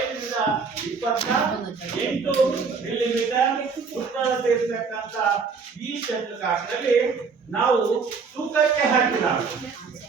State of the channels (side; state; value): left; quieter; 5.2 dB